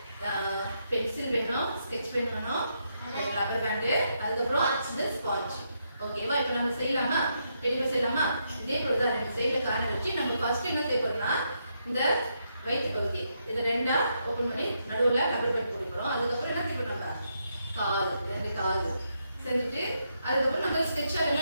பென்சில் வேணும், ஸ்கெட்ச் பென் வேணும், ரப்பர் பேண்டு, அதுக்கப்புறம் இந்த ஸ்பாஞ்ச். ஓகேவா? இப்போ நம்ம செய்யலாமா? டெடி பேர் செய்யலாமா? இதே போலதான் ரெண்டு சைடுல கார்னர் வச்சு நம்ம ஃபர்ஸ்ட் என்ன செய்ய போறோம்னா, இந்த வயிற்று பகுதி இதை ரெண்டா ஓபன் பண்ணி நடுவுல ரப்பர் பேண்ட் போட போறோம். அதுக்கப்புறம் என்ன செய்ய போறோம்? நம்ம காது, ரெண்டு காது செஞ்சுட்டு அதுக்கப்புறம் நம்ம ஸ்கெட்சால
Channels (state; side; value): inverted; both; correlation -0.80